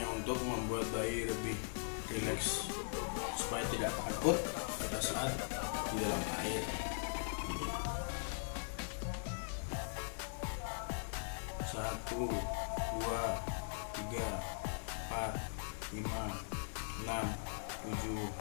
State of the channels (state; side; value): silent; right; 51 dB below the other